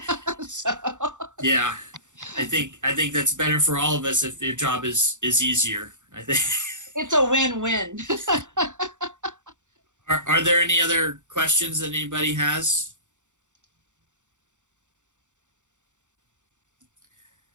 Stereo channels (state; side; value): late; left; 0.85 ms